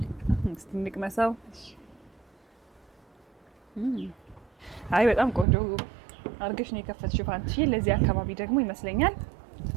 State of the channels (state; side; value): drops out; left; at 5.5 s